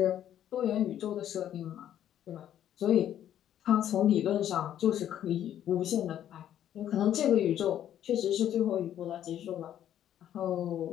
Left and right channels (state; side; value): quieter; right; 10.9 dB